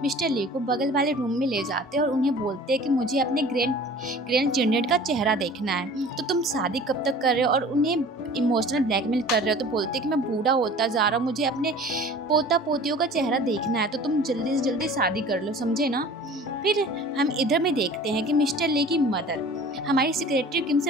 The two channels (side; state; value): both; normal; correlation 0.44